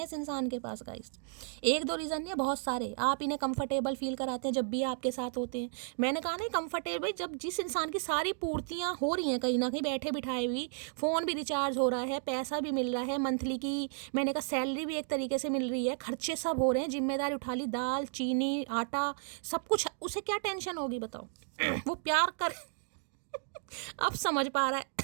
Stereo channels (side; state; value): left; silent; digital silence